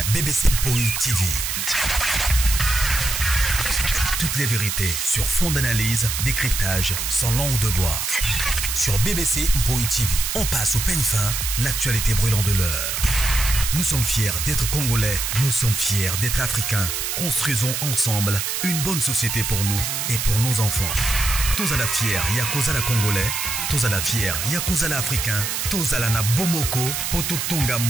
BBC Mpoi TV. Toutes les vérités sur fond d'analyse, décryptage, sans langue de bois. Sur BBC Mpoi TV, on passe au peigne fin, l'actualité brûlante de l'heure. Nous sommes fiers d'être Congolais, nous sommes fiers d'être Africains. Construisons ensemble une bonne société pour nous et pour nos enfants. Tous à la fière, Yakozala Congolais. Tous à la fière, Yakozala Africain. Tous à la na Bomoko, Poto Tonga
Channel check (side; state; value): right; noise; hiss, 2 dB below the sound